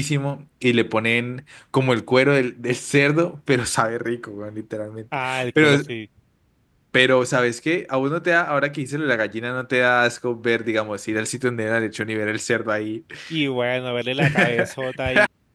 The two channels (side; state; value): both; identical; correlation 1.00